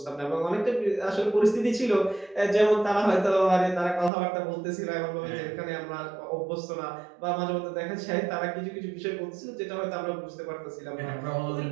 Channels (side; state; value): left; drops out; at 4.1 s